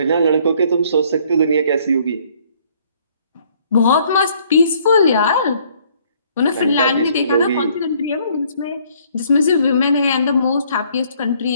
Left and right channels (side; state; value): both; inverted; correlation -0.63